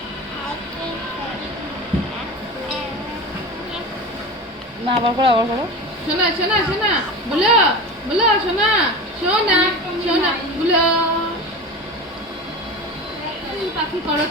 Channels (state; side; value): normal; both; correlation 0.29